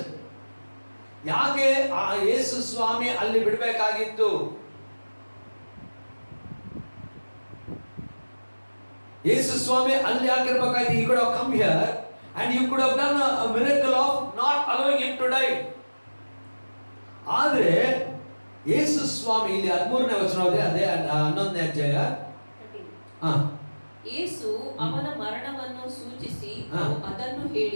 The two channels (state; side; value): inverted; both; correlation -1.00